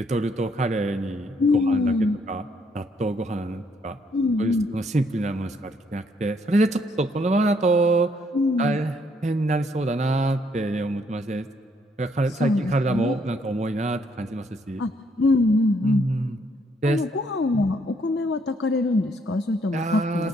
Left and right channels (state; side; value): normal; both; correlation 0.70